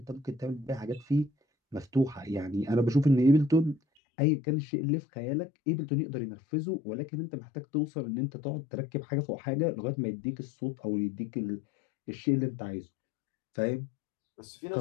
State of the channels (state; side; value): drops out; right; at 3.8 s